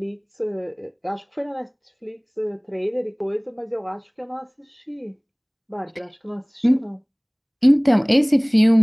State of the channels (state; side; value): identical; both; correlation 1.00